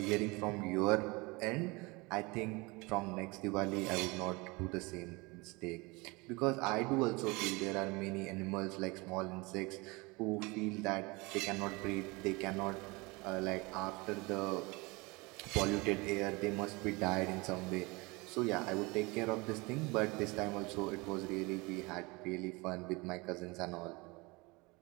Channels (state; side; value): quieter; left; 25.3 dB